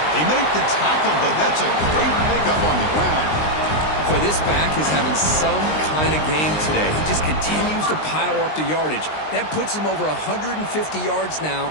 They make the tackle, but that's a great pickup on the ground. Boy, this back is having some kind of game today. He just continues to pile up the yardage. That puts him over 150 yards now,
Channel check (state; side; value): late; right; 19 ms